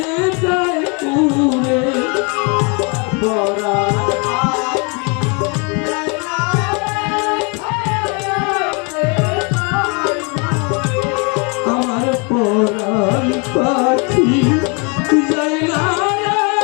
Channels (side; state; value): right; quieter; 33.3 dB